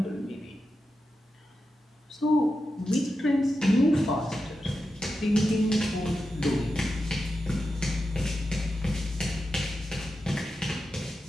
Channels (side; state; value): both; normal; correlation 0.90